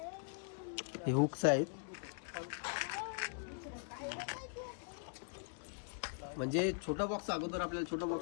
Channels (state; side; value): silent; right; digital silence